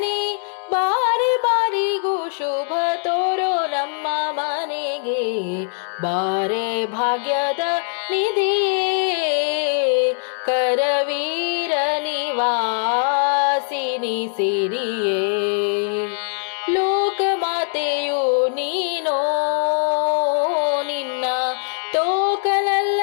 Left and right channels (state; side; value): silent; right; digital silence